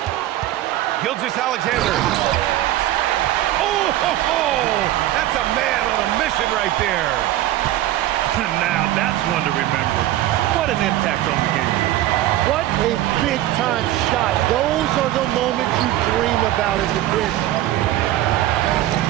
Gilgeous-Alexander. Oh, ho, ho! That's a man on a mission right there. Now that's one to remember. What an impact on the game. What a big-time shot. Those are the moments you dream about as a kid.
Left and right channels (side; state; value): left; quieter; 14.4 dB